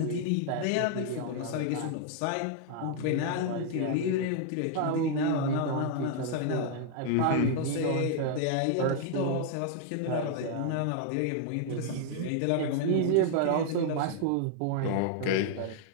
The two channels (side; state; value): both; different; correlation 0.00